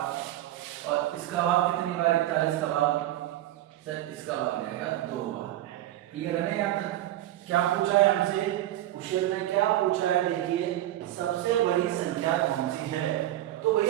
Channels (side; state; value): left; quieter; 14.1 dB